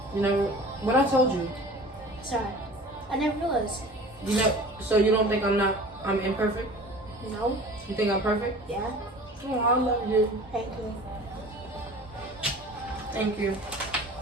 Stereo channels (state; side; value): normal; both; correlation 0.42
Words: You know, what I told you. Sorry. I never realized. You know, so you don't think I'm imperfect? No. You think I'm perfect? Yeah. Oh, I love you. Thank you. Thank you.